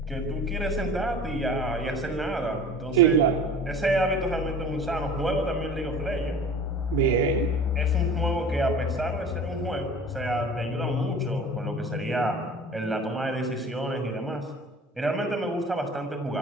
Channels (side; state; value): both; normal; correlation 0.41